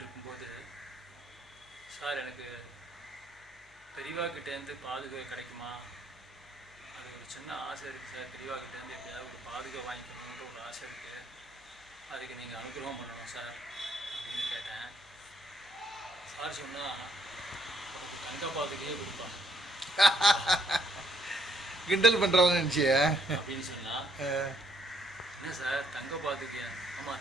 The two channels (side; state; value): left; noise; hum, 30 dB below the sound